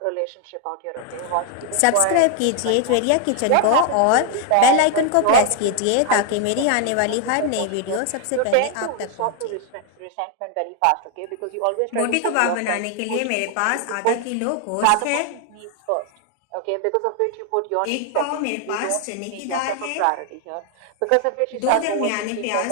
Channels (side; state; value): both; different; correlation 0.00